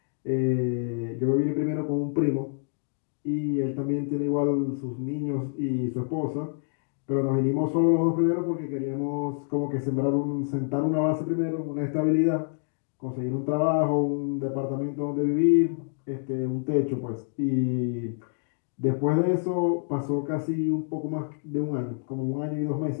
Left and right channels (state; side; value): silent; right; 60 dB below the other